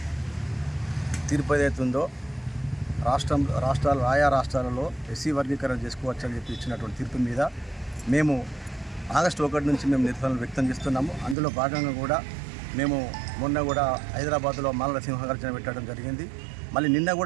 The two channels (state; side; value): drops out; left; at 11.4 s